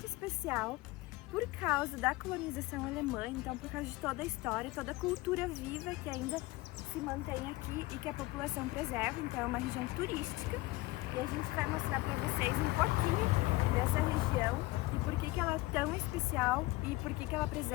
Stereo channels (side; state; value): right; quieter; 20.4 dB